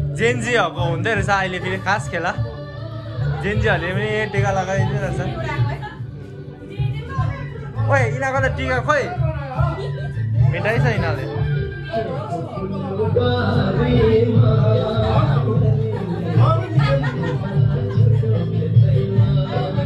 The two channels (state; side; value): identical; both; correlation 1.00